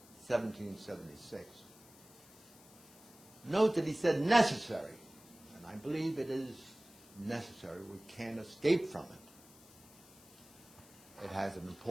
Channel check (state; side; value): noise; left; hiss, 23 dB below the sound